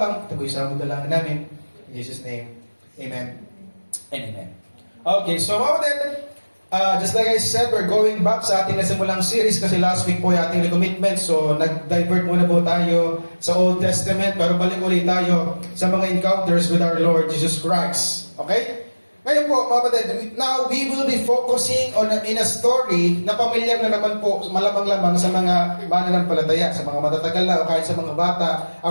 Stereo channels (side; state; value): both; inverted; correlation -1.00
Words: Ito po isang dalangin namin. In Jesus' name, Amen and Amen. Okay, so then, just like I said, we're going back sa ating nasimulang series kasi last week po yung ating recommitment. So, nag-divert muna po tayo sa Old Testament pero balik ulit tayo sa mga encounters with our Lord Jesus Christ. Okay? Ngayon po, mga kapatid, now we will be focusing on in a story na pamilyar na naman po, malamang-lamang sa mga mananampalataya, sa mga matatagal na o kahit sa mga bata.